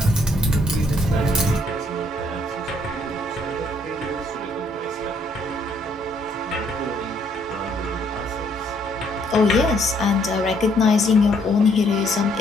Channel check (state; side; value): normal; both; correlation 0.67